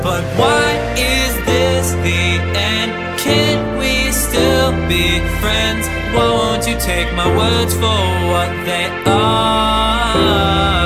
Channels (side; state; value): both; identical; correlation 1.00